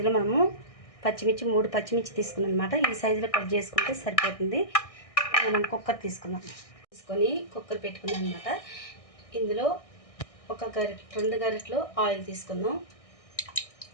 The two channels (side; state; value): right; late; 1.6 ms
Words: మనము పచ్చిమిర్చి 3 పచ్చిమిర్చి తీసుకున్నాను అనమాట. ఈ సైజులో కట్ చేసుకుంటే సరిపోతుంది. మనం కుక్కర్ తీసుకున్నాం, తీసుకొని కుక్కర్ పెట్టుకున్నాం అనమాట. ఇందులో 2 గరిటెలు ఆయిల్ తీసుకుందాం.